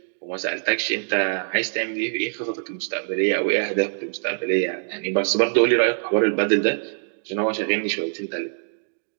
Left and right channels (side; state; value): left; silent; digital silence